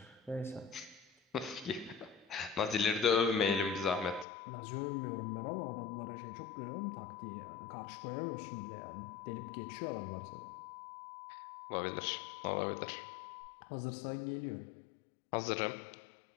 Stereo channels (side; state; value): right; drops out; at 4.2 s